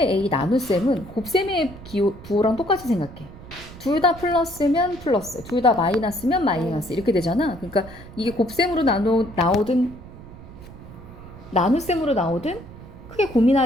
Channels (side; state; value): right; noise; rumble, 17 dB below the sound